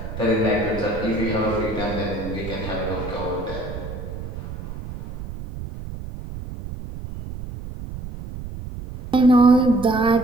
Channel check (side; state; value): right; noise; rumble, 10 dB below the sound